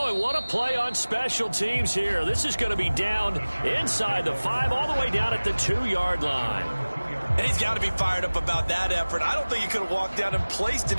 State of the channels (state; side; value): inverted; both; correlation -1.00